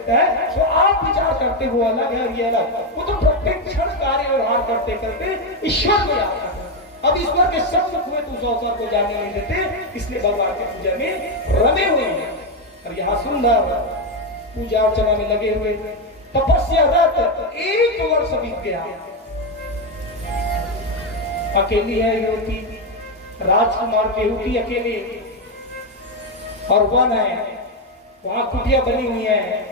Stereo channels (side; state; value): both; normal; correlation 0.06